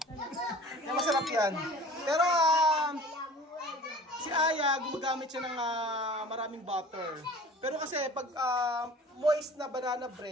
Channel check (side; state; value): both; normal; correlation 0.44